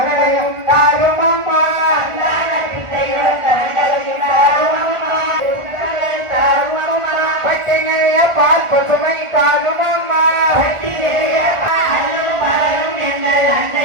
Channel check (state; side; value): late; left; 1.4 ms